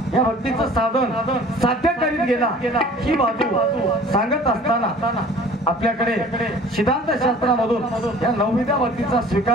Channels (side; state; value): both; normal; correlation 0.47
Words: या भक्तीचं साधन साध्य करीत गेला ही बाजू सांगत असताना आपल्याकडे सिद्धांत शास्त्रामधून या नवविद्या भक्तीचा